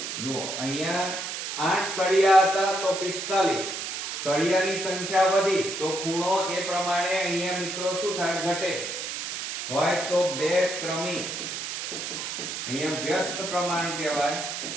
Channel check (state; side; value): noise; right; hiss, 5 dB below the sound